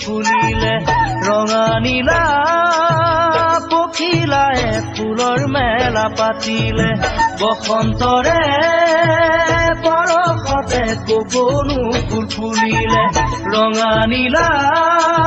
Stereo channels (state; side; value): identical; both; correlation 1.00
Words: ফুলিলে ৰঙা নীলা পখিলাই ফুলৰ মেলা পাতিলে বসন্তৰে পৰশতে কপনো ফুল ফুলিলে ৰঙা নীলা